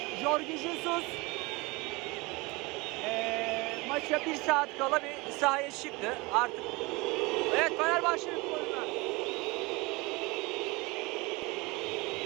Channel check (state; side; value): quieter; left; 24.9 dB